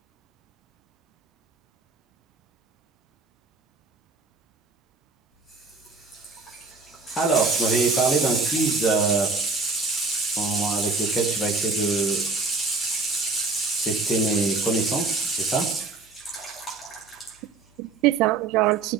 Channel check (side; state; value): left; quieter; 4.0 dB